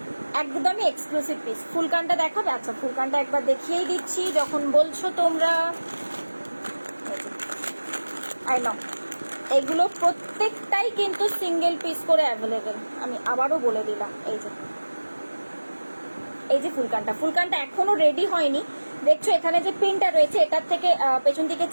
একদমই এক্সক্লুসিভ পিস। ফুলকানটা দেখো, আচ্ছা ফুলকানটা একবার দেখিয়েই দিচ্ছি যখন বলছো তোমরা। আই নো এগুলো প্রত্যেকটাই কিন্তু সিঙ্গেল পিস করে অ্যাভেলেবেল, আমি আবারও বলে দিলাম। এই যে ফুলকানটা এখনো রেডি হয়নি, দেখছো এখানে যে পিনটা রয়েছে এটার থেকে পেছন দিকে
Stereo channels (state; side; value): inverted; both; correlation -1.00